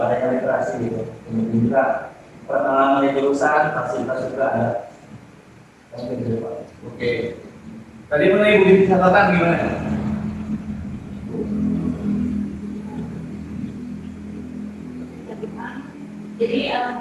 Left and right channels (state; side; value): identical; both; correlation 1.00